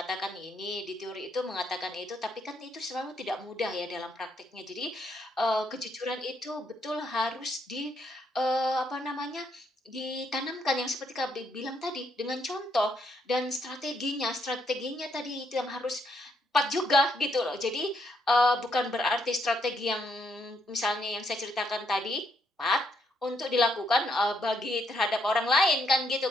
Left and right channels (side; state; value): both; normal; correlation 0.74